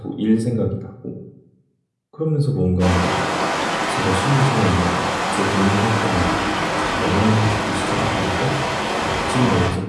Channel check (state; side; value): identical; both; correlation 1.00